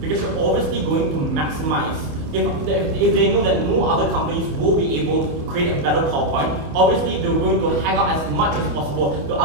Because you're obviously going to maximize. If they know that no other companies will be able to create a better PowerPoint, obviously they're going to hang out as much as possible to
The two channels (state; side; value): late; left; 27 ms